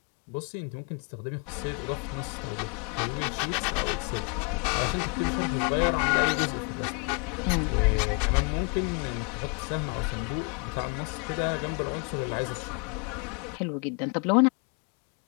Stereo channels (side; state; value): right; quieter; 34.7 dB